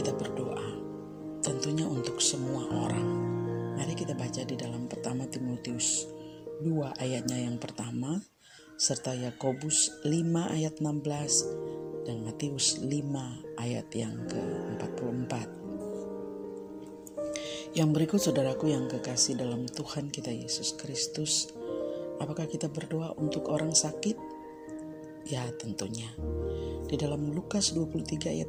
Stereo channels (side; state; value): both; identical; correlation 1.00